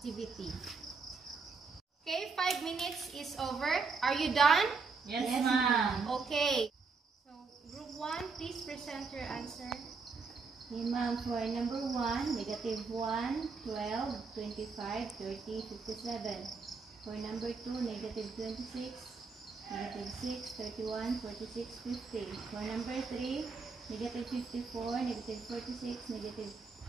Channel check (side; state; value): left; quieter; 4.6 dB